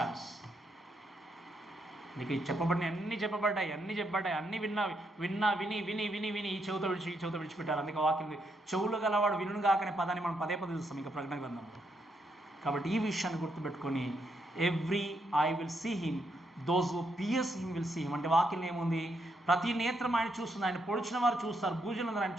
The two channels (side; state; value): both; normal; correlation 0.78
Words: నీకు చెప్పబడిన అన్నీ చెప్పబడ్డాయి, అన్నీ విని ఈ చెవుతో విడిచిపెట్టారు. అందుకే వాక్యం చెవులు గలవాడు వినును గాకనే పదాన్ని మనం పదే చూస్తాం ఇంకా ప్రకటన గ్రంథంలో. కాబట్టి ఈ విషయాన్ని గుర్తుపెట్టుకొని every I will see him, those who pierce him will see him. అంటే వాక్యం ఏముంది? ప్రతి నేత్రం ఆయన చూస్తుంది, ఆయన పొడిచిన వారు చూస్తారు, భూజనులందరూ ఆయన